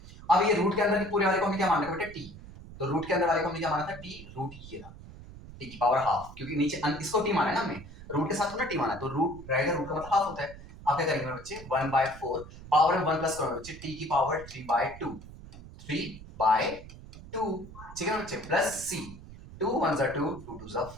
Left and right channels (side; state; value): right; noise; rumble, 16 dB below the sound